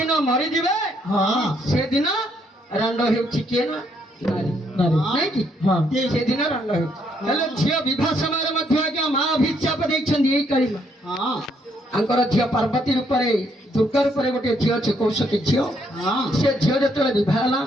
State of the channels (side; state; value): both; normal; correlation 0.72